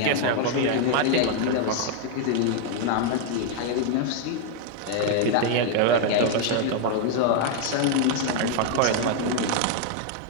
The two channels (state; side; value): different; both; correlation 0.00